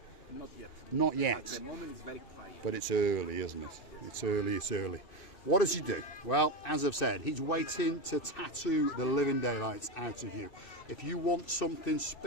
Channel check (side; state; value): right; late; 2.5 ms